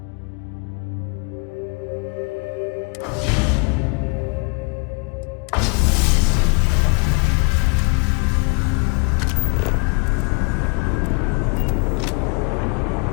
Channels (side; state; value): right; quieter; 34.1 dB